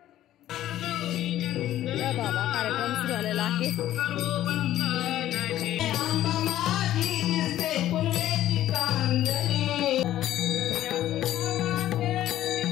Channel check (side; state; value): right; quieter; 13.1 dB